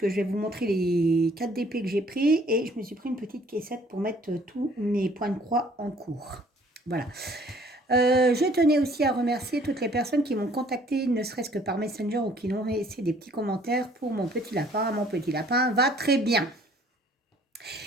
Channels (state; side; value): normal; both; correlation 0.58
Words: je vais vous montrer les 4 DP que j'ai pris et je me suis pris une petite caissette pour mettre tous mes points de croix en cours. Voilà. Je tenais aussi à remercier toutes les personnes qui m'ont contacté, ne serait-ce que par Messenger ou qui m'ont laissé des petits commentaires pour mon petit lapin. Mon petit lapin va très bien.